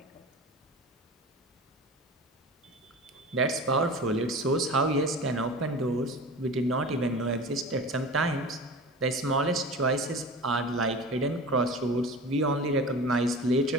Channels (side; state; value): both; normal; correlation 0.34